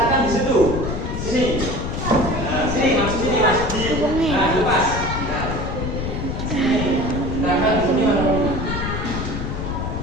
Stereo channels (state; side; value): noise; left; rumble, 3 dB below the sound